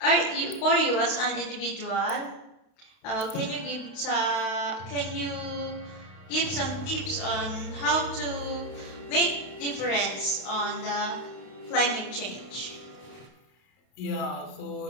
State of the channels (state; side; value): late; right; 32 ms